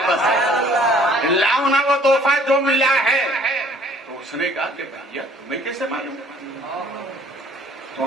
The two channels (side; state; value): both; normal; correlation 0.57